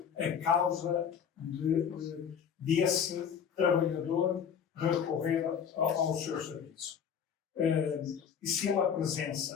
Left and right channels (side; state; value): right; quieter; 7.6 dB